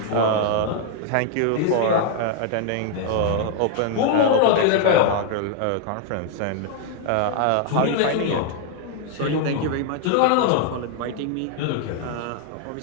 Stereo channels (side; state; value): both; different; correlation 0.00